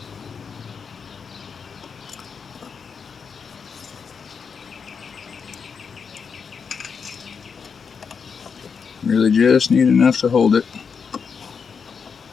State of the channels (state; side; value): quieter; right; 6.0 dB